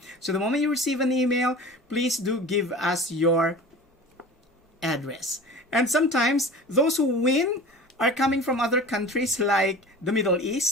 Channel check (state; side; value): normal; both; correlation 0.38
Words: So the moment you receive an email, please do give us your address. And sometimes those who win are coming from other countries like the Middle